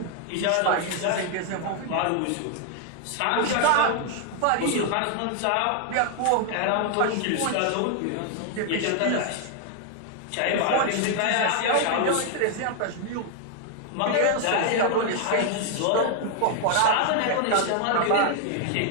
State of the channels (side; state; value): both; different; correlation 0.00